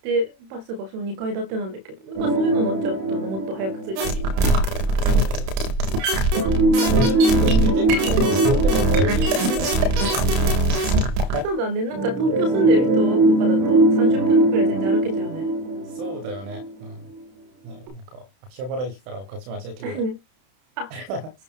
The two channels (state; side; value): late; left; 31 ms